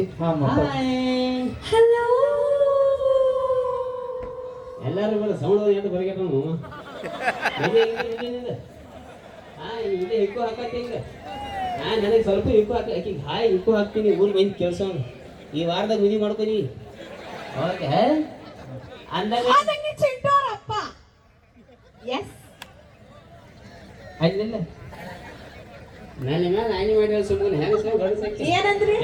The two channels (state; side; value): identical; both; correlation 1.00